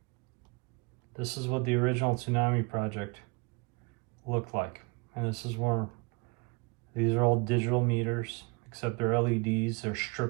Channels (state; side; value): quieter; left; 29.7 dB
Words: This is what the original Tsunami Project looked like. And this is where these are all digital meters, except they're LEDs. They're